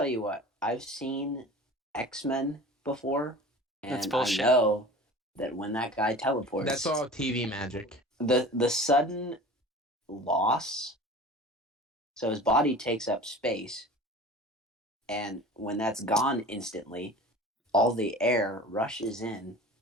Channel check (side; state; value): both; normal; correlation 0.39